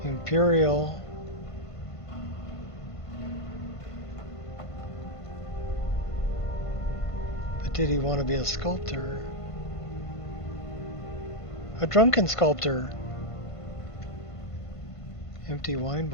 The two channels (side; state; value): right; late; 1.5 ms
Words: Imperial. But did he want to be a sculptor? A drunken sculptor. Empty wine